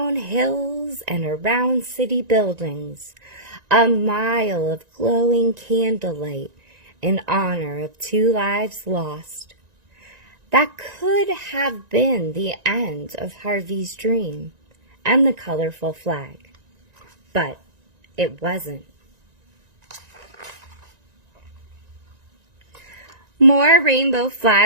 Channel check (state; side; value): late; left; 1.9 ms